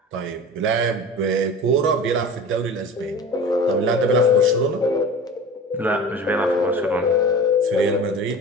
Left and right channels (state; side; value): normal; both; correlation 0.36